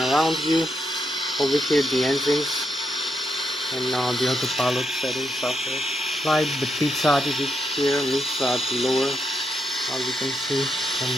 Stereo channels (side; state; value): both; normal; correlation 0.81